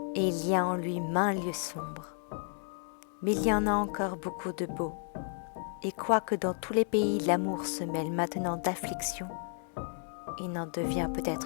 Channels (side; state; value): right; silent; 56 dB below the other